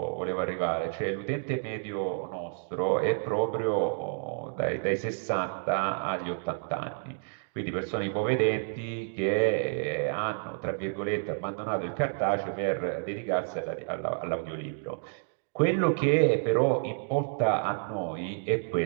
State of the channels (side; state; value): left; silent; digital silence